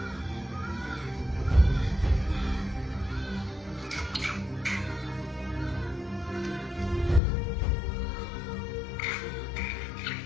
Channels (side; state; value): right; drops out; at 7.2 s